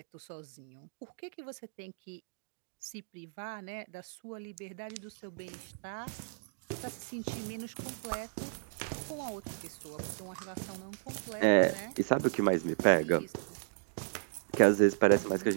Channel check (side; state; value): left; silent; digital silence